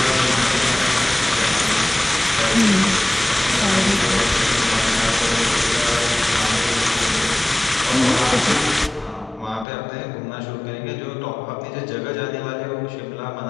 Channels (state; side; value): drops out; right; at 9.7 s